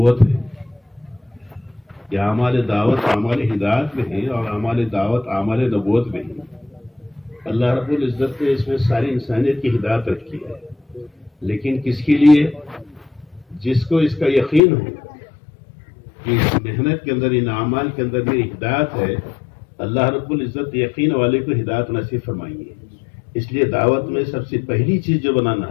ہے۔ یہ اعمال دعوت اعمال ہدایت میں ہیں اور اعمال دعوت اعمال نبوت میں ہیں۔ اللہ رب العزت نے اس میں ساری انسانیت کی ہدایت رکھی ہے، لیکن کس کے لیے؟ جس کو اس کا یقین ہو کہ اس محنت کے اندر، ان اعمال کے اندر میری ہدایت ہے، اللہ رب العزت یقین والے کو ہدایت نصیب فرمائیں گے۔ اس لیے دعوت میں سب سے پہلی چیز جو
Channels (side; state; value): right; drops out; at 14.6 s